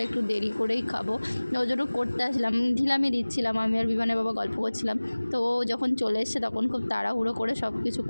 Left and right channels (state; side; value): inverted; both; correlation -1.00